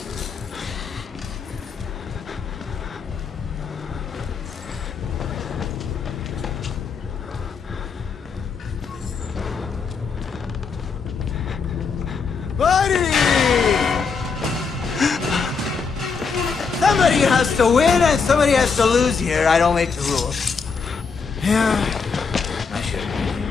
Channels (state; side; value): quieter; right; 5.3 dB